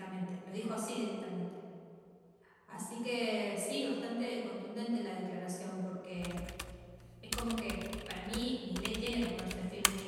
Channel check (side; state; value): both; identical; correlation 1.00